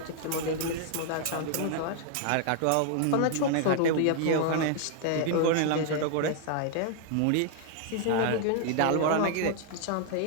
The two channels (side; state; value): both; different; correlation 0.00